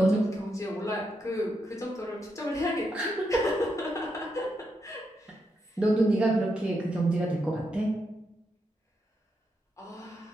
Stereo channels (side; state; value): both; normal; correlation 0.82